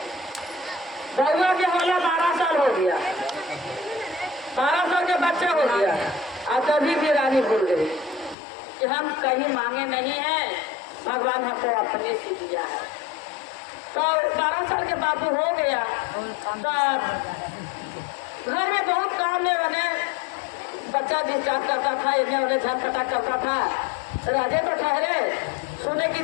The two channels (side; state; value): right; drops out; at 8.3 s